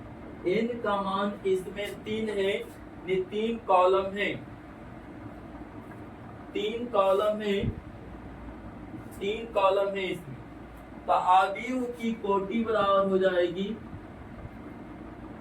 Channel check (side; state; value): both; identical; correlation 1.00